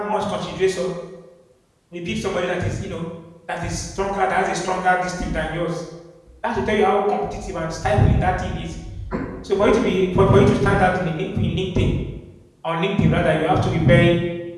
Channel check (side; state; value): both; identical; correlation 1.00